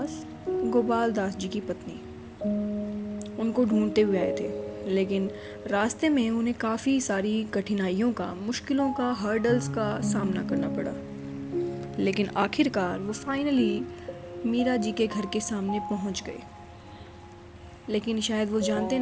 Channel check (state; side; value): identical; both; correlation 1.00